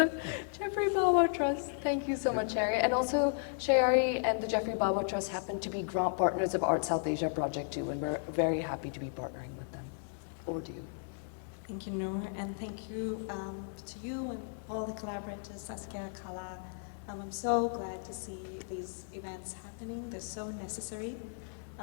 Geoffrey Bawa Trust. Thank you so much, Shayari. And also, Shayari and the Geoffrey Bawa Trust happen to be grant partners of Art South Asia Project too, and we're very happy to be partnering with them. Over to you. Thank you, Nour, and thank you to you and all the collaborators, Saskia, KALΑ. I'm so glad to see these events happening. They're so necessary.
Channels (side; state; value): right; silent; digital silence